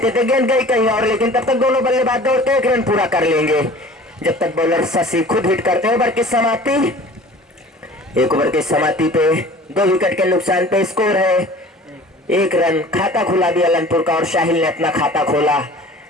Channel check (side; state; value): both; normal; correlation 0.44